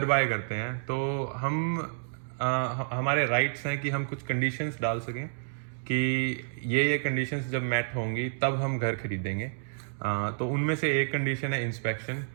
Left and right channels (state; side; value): silent; left; digital silence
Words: बाय करते हैं तो हमारे राइट्स हैं कि हम कुछ कंडीशंस डाल सकें कि ये कंडीशंस जब मैट होंगी तब हम घर खरीदेंगे। तो उनमें से एक कंडीशन है इंस्पेक्शन,